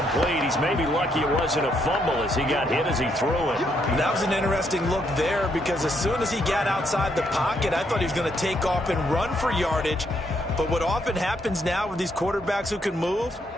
He's maybe lucky it wasn't a fumble as he got hit as he threw it. That was an interesting look there because as soon as he got outside the pocket, I thought he was going to take off and run for yardage. But what often happens now with these quarterbacks who can move,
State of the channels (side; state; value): both; normal; correlation 0.74